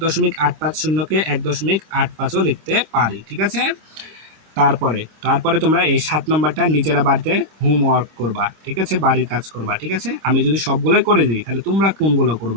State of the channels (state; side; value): late; left; 25 ms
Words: 1.850ও লিখতে পারি, ঠিক আছে। তারপরে তোমরা এই 7 নম্বরটা নিজেরা বাড়িতে হোমওয়ার্ক করবা, ঠিক আছে, বাড়ির কাজ করবা, ঠিক আছে। আমি যদি সবগুলোই করে দিই তাহলে তোমরা কোনগুলো